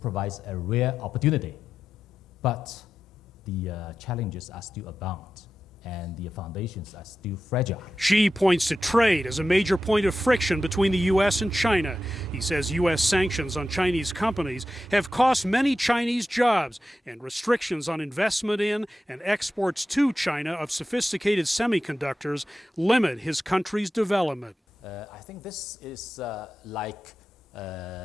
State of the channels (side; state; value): both; normal; correlation 0.91